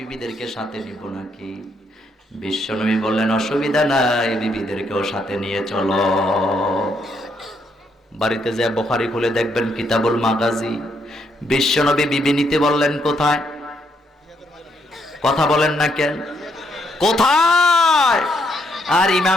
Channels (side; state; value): both; normal; correlation 0.74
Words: সাথে নিব নাকি? বিশ্বনবী বললেন, অসুবিধা নাই, বিবিদেরকেও সাথে নিয়ে চলো। বাড়িতে যে বুখারী খুলে দেখবেন কিতাবুল মাগাজি, বিশ্বনবী বিবি নিতে বললেন কোথায়? কথা বলেন না কেন? কোথায়? আর